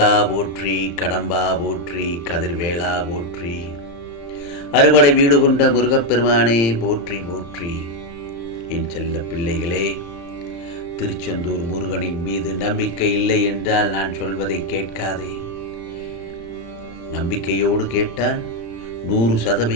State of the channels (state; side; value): late; right; 35 ms